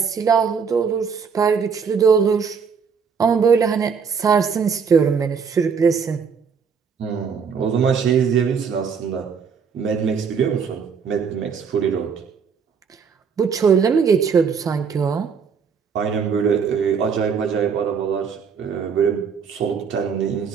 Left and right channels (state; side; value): quieter; left; 6.2 dB